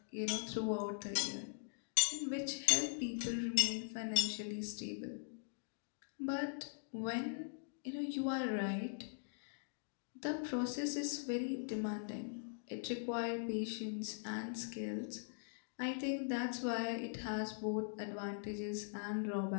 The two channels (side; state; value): right; silent; digital silence